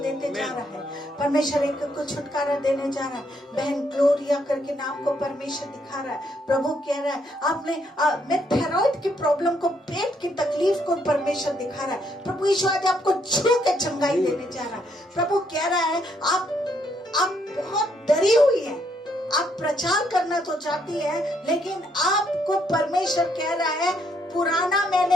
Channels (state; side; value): normal; both; correlation 0.73